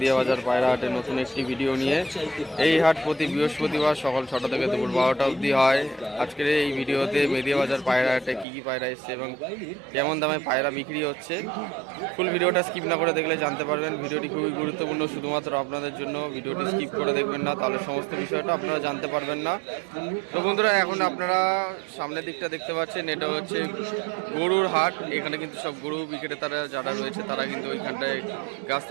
বাজার পায়রা হাটে নতুন একটি ভিডিও নিয়ে। এই হাট প্রতি বৃহস্পতিবার সকাল 6টা থেকে দুপুর 12টা অবধি হয়। আজকের এই ভিডিওতে মেদিয়া বাজার পায়রা হাটে কী কী পায়রা এসছে এবং কেমন দামে পায়রা বিক্রি হচ্ছে, ফুল ভিডিওটা স্কিপ না করে দেখলে জানতে পারবেন। ভিডিওটি খুবই গুরুত্বপূর্ণ, শুধুমাত্র আপনাদের জন্য। ভিডিওটি স্কিপ করে দেখবেন না, তাহলে সমস্ত বিষয়টা আপনারা জানতে পারবেন না। তো বন্ধুরা, এখন আপনারা সামনের দিকটা দেখতে পাচ্ছেন, এটা হচ্ছে গরুর হাট। এখানে কিন্তু সব গরু বিক্রেতারা যারা রয়েছে তারা কিন্তু ওইখানটায়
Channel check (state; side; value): drops out; left; at 8.5 s